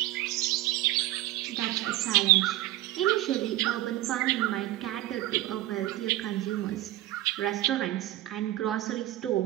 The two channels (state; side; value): quieter; left; 15.9 dB